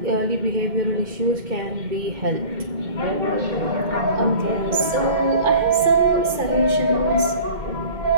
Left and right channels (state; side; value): late; left; 2.1 ms